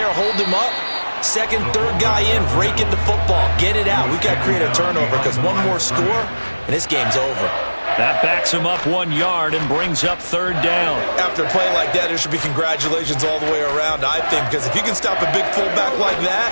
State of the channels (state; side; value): inverted; both; correlation -1.00